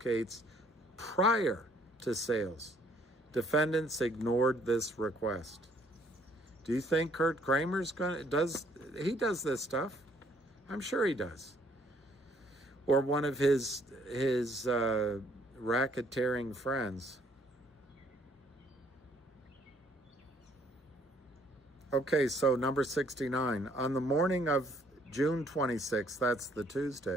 prior to sales. Defendants ignored this request. Do you think Kurt Kramer's does this stuff? I'm sure he does. Or one of his racketeering friends. Okay, so number 69. On the morning of June 26th, that's the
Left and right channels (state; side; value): normal; both; correlation 0.64